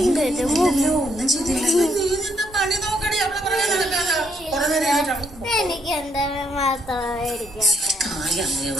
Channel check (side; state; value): both; normal; correlation 0.73